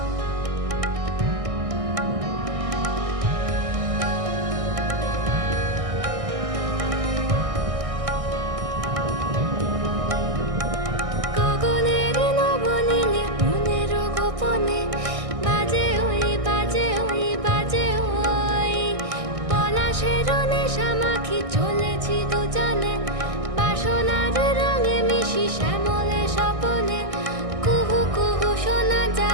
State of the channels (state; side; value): late; left; 1.6 ms